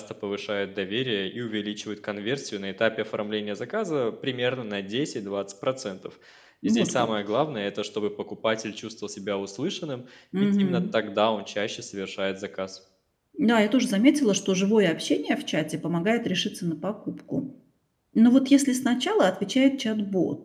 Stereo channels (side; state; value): both; identical; correlation 1.00